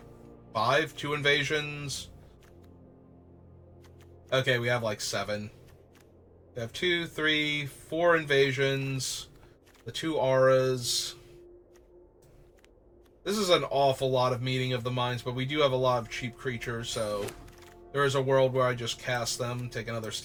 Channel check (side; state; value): both; identical; correlation 1.00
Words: 2 invasions. Okay, we have like 7. We have 2, 3, 4 invasions, the 2 auras. This is an awful lot of Meeting of the Minds, but we do have a lot of cheap creatures, so there is a world where I just cast them, take another